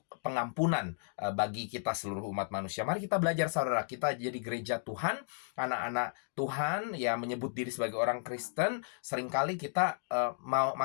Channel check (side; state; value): right; silent; digital silence